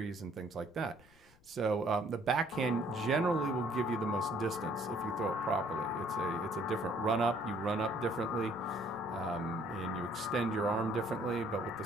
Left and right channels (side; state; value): left; noise; rumble, 28 dB below the sound